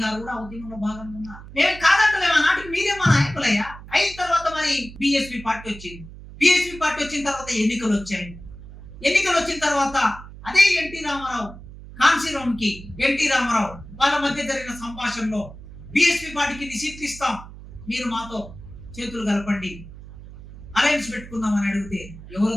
గారు కూడా ఉద్యమంలో భాగంగా ఉన్నారు. మేము కాదంటలేము, ఆ నాటికి మీరే మా నాయకులయ్యా. అయిన తర్వాత మరి బిఎస్పీ పార్టీ వచ్చింది. బిఎస్పీ పార్టీ వచ్చిన తర్వాత ఎన్నికలు వచ్చాయి. ఎన్నికలు వచ్చిన తర్వాత అదే ఎన్టీ రామారావు, కాన్సీరామ్కి ఎన్టీ రామారావు వాళ్ళ మధ్య జరిగిన సంభాషణలో బిఎస్పీ పార్టీకి సీట్లు ఇస్తాం, మీరు మాతో చేతులు కలపండి, అలయన్స్ పెట్టుకుందామని అడిగితే ఎవరు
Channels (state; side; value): noise; right; hum, 16 dB below the sound